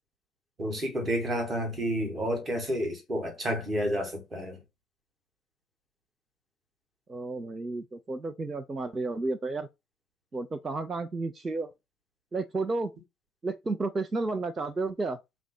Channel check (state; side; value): normal; both; correlation 0.75